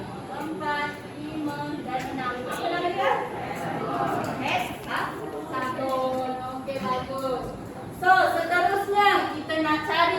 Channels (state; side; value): identical; both; correlation 1.00